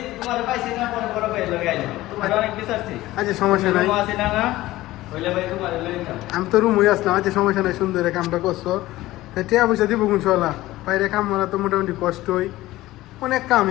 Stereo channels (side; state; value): right; quieter; 16.9 dB